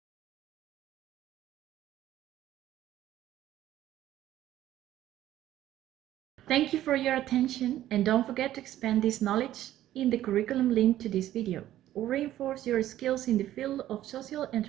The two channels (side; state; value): left; quieter; 13.2 dB